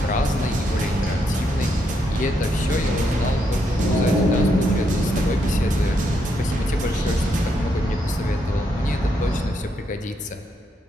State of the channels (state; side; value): normal; both; correlation 0.78